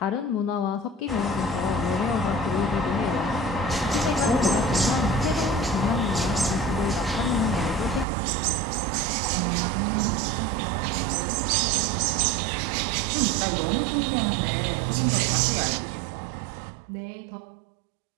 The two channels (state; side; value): drops out; left; at 8.1 s